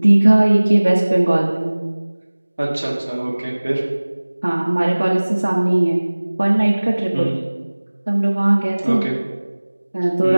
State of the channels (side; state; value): both; inverted; correlation -1.00